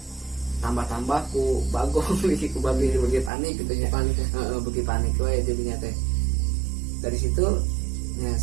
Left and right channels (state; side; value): drops out; left; at 3.3 s